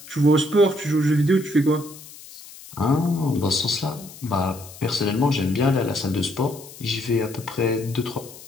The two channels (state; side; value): noise; left; hiss, 18 dB below the sound